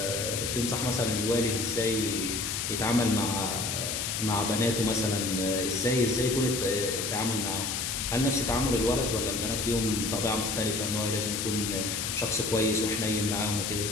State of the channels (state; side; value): noise; left; hiss, 2 dB below the sound